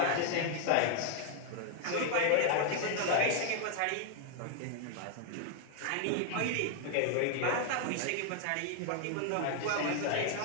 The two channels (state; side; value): different; both; correlation 0.00